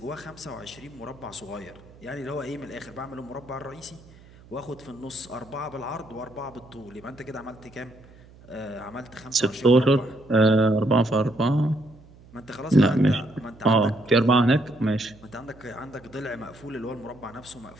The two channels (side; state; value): right; noise; hum, 23 dB below the sound